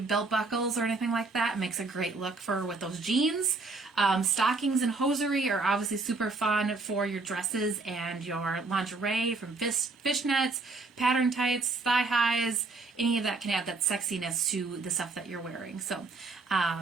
buckles or anything like that. It makes a great look for with those jeans. Stockings and hosiery are obviously super fun for your dresses and your lingerie, from fishnets, pattern tights, thigh highs. Any of that can add that sexiness to the stuff that you're wearing. So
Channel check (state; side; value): quieter; left; 3.7 dB